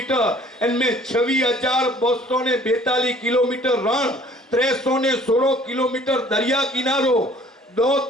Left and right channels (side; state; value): both; normal; correlation 0.54